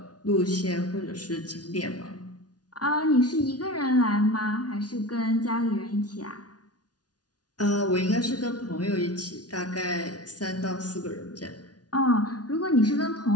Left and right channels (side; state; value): right; late; 0.69 ms